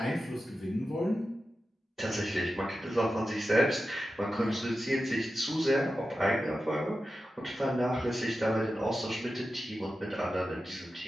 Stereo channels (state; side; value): normal; both; correlation 0.92